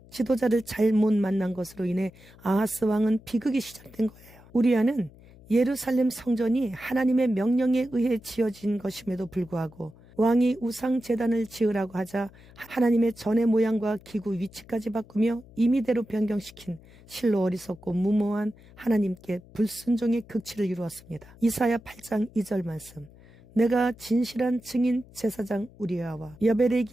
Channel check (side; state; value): left; noise; hum, 23 dB below the sound